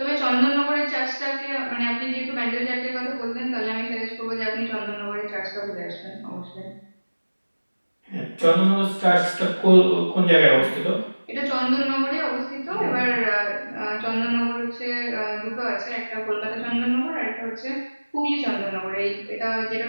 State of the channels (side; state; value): both; inverted; correlation -1.00